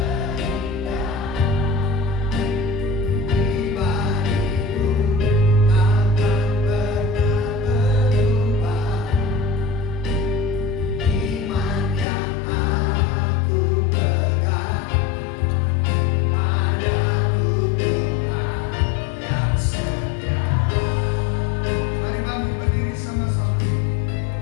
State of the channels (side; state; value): right; drops out; at 12.1 s